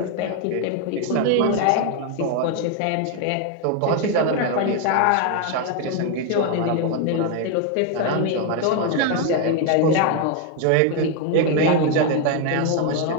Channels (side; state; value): both; different; correlation 0.01